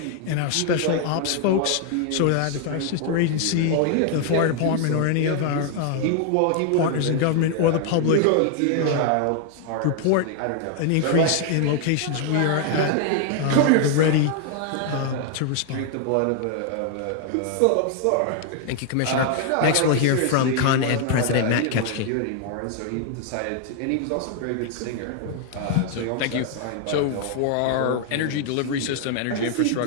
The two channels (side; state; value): both; different; correlation 0.00